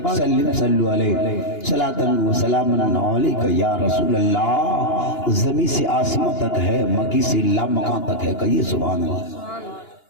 सल्लिम सल्लु अलैहि सलातन व सलामन अलैका या रसूल अल्लाह। ज़मीन से आसमां तक है, मकी से लामकां तक है, कहिए सुभान अल्लाह।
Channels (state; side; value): late; right; 2.9 ms